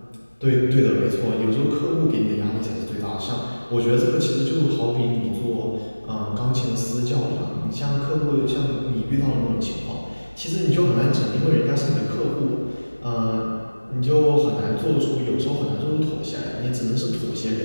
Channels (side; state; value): both; inverted; correlation -1.00